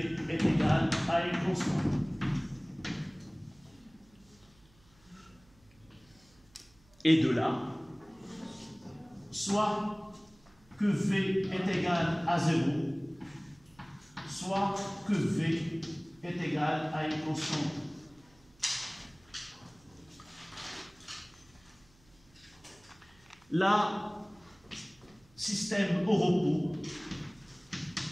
est égal à une constante. Et de là, soit que v est égal à 0, soit que v est égal à une constante. Là, système au repos,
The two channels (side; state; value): right; noise; hum, 29 dB below the sound